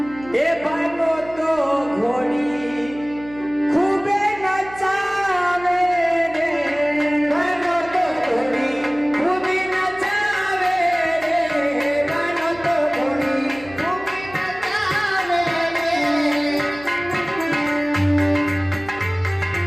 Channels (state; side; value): noise; right; hum, 19 dB below the sound